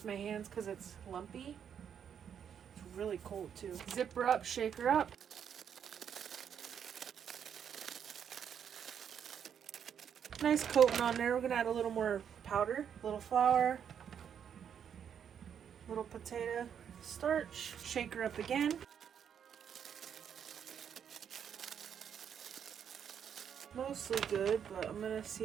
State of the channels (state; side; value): quieter; left; 8.2 dB